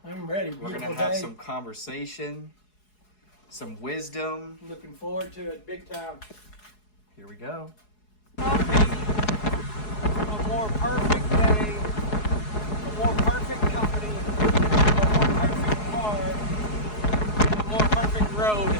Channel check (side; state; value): right; late; 4.7 ms